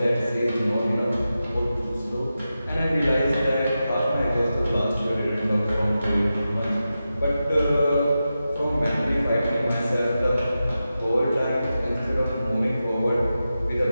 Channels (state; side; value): inverted; both; correlation -0.91